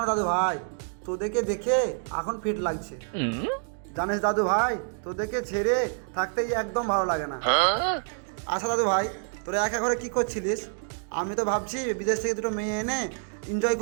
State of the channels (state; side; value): silent; left; digital silence